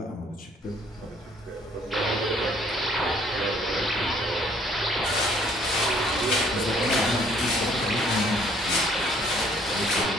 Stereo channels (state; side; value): normal; both; correlation 0.62